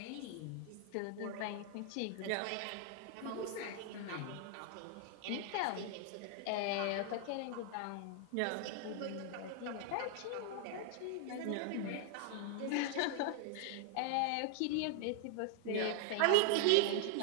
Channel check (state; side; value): different; both; correlation 0.00